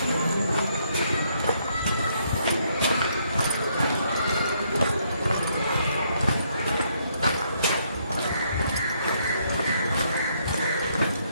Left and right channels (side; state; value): both; inverted; correlation -0.72